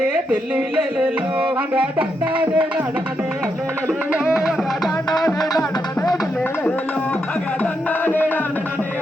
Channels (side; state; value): both; normal; correlation 0.81